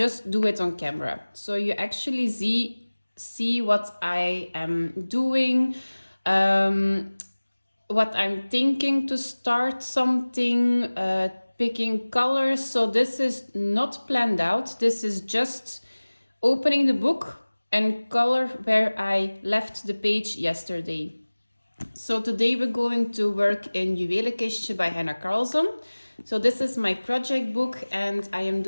do it on camera. So you actually see what I am doing, what I'm thinking to start something, picking colors. So this is not planned out. This is just opening the book and color where I left the page yesterday. So today we're going to work in Juwelenkistje by Hanna Karlzon. So this is my project book and I am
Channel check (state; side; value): inverted; both; correlation -1.00